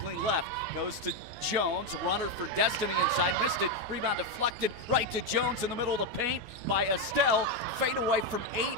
left. Goes to Jones, runner for Destiny inside, missed it. Rebound deflected right to Jones in the middle of the paint by Estelle. Fade away from 8,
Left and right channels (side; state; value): left; late; 12 ms